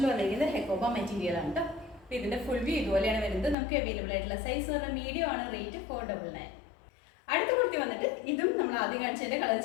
വന്നിരിക്കുന്നത് ഹെക്കോബ മെറ്റീരിയൽ ആണ്. അപ്പോൾ ഇതിന്റെ ഫുൾ വ്യൂ ഇതുപോലെയാണ് വരുന്നത്. നമുക്ക് അവൈലബിൾ ആയിട്ടുള്ള സൈസ് എന്ന് പറഞ്ഞാൽ മീഡിയം ആണ്. റേറ്റ് 499. അടുത്ത കുർത്തി വന്നിട്ട് ഇതും നമ്മൾ ആദ്യം കാണിച്ചതിന്റെ കളർ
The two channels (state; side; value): drops out; right; at 3.6 s